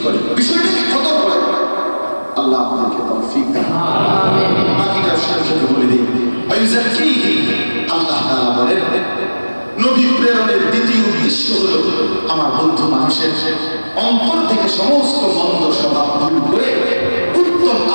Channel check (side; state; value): both; inverted; correlation -1.00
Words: করে বিষয়টাকে কত করে আল্লাহ আপনাকে তৌফিক দেন। আমিন। বাকিটা সাথে বলে দিই, আল্লাহ তাআলা বলেন নবী প্রেরণের দ্বিতীয় উদ্দেশ্য হলো আমার বন্ধু মানুষের অন্তর থেকে সমস্ত মন্দ স্বভাব দূর করে উত্তম